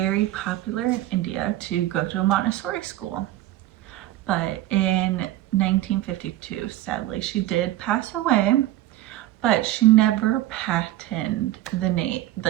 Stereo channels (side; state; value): left; quieter; 15.1 dB